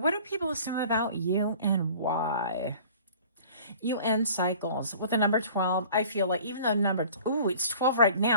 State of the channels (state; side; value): inverted; both; correlation -0.47